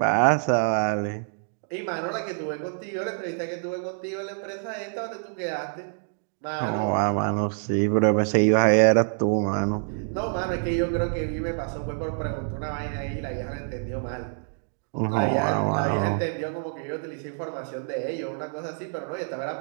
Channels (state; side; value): silent; left; 61 dB below the other